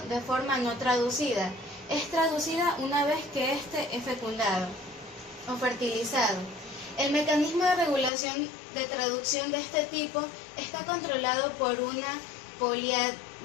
de forma no traducida. Es traducida una vez que éste es fecundado o fertilizado. El mecanismo de regulación de traducción de este tipo está controlado por una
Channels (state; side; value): drops out; right; at 8.1 s